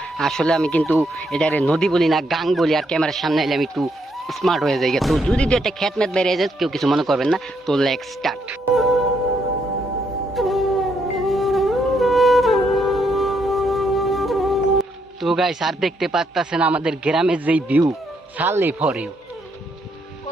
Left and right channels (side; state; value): both; normal; correlation 0.75